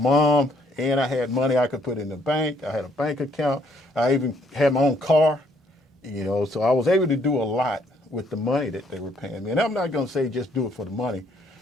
and I had money I could put in the bank. I had a bank account. I even had my own car, so I was able to do a lot with the money that they were paying me. And I'm not going to say just do it for the money,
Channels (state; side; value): normal; both; correlation 0.67